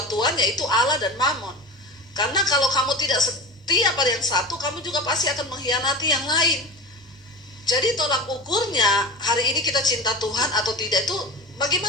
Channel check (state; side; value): normal; both; correlation 0.31